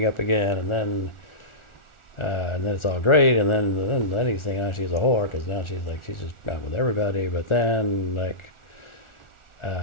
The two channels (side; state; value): right; late; 1.4 ms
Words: up again and then it's all great. And then he's thinking, oh, she's a whore because now she's just out with everybody. But then like,